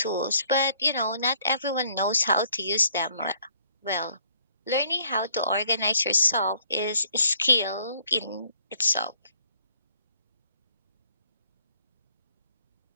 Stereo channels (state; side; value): inverted; both; correlation -0.64